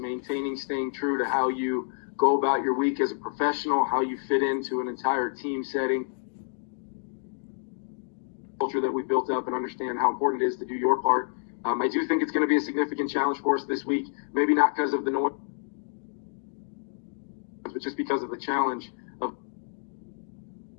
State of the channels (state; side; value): silent; right; digital silence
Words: true to how you go about your week as a professional, how you fit into an entire team setting, culture that we built up, and understand how important it is to do your part. I do think it's going to be a significant challenge for us this week, maybe not because of the noise, but just because of the challenge of